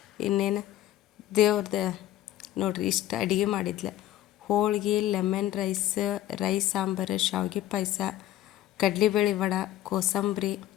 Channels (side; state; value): right; quieter; 13.2 dB